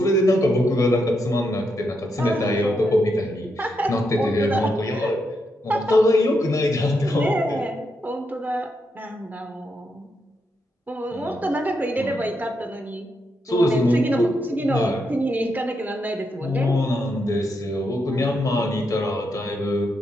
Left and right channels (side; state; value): both; normal; correlation 0.82